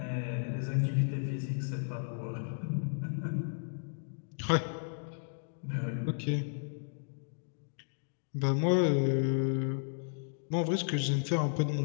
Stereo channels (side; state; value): right; silent; digital silence